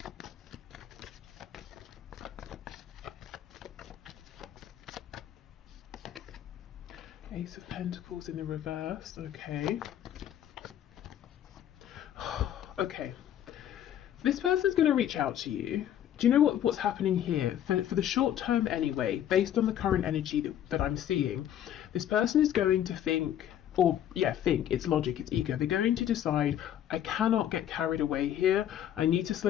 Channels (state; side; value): quieter; right; 10.8 dB